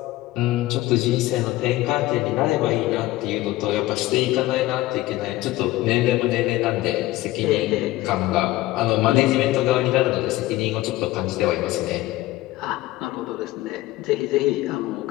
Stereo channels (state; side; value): quieter; right; 17.3 dB